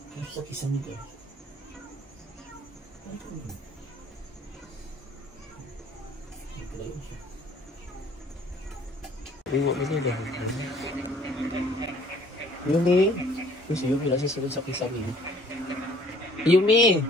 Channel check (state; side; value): normal; both; correlation 0.57